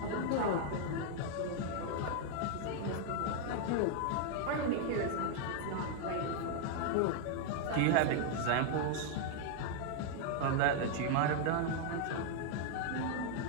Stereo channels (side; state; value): both; different; correlation 0.00